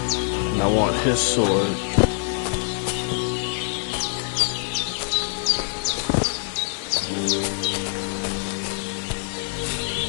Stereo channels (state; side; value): silent; right; digital silence